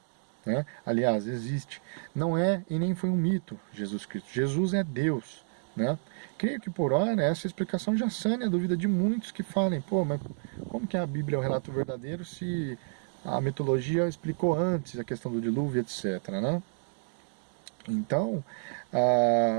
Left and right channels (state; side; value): silent; left; digital silence